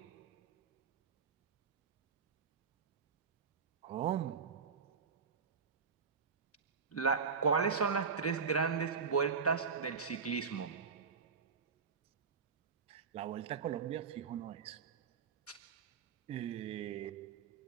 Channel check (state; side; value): quieter; left; 5.7 dB